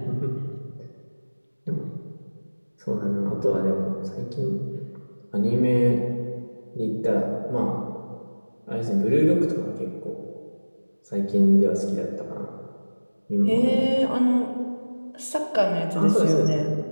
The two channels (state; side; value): inverted; both; correlation -1.00